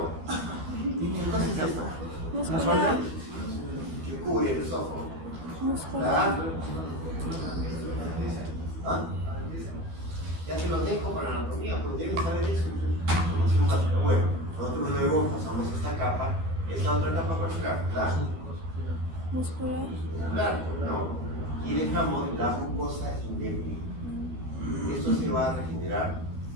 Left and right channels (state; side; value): late; left; 12 ms